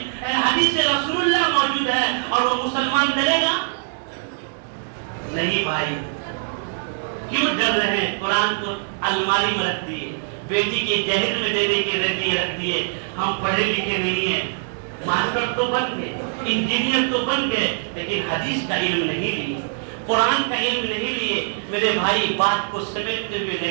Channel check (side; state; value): left; silent; digital silence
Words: حدیث رسول اللہ موجود ہے، اور وہ مسلمان ڈرے گا؟ نہیں بھائی، کیوں ڈر رہے ہیں؟ قرآن کو الماری میں رکھ دیے، بیٹی کی جہیز میں دینے کے رکھ دیے۔ ہم پڑھے لکھے نہیں ہیں، ماسٹر تو بن گئے، انجینئر تو بن گئے، لیکن حدیث کا علم نہیں لیے، قرآن کا علم نہیں لیے۔ میرے بھائی بات کو سمیٹتے ہوئے لے